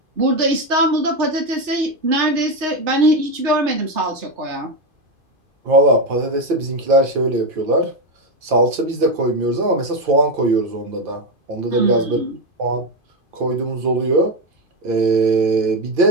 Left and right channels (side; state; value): left; late; 2.5 ms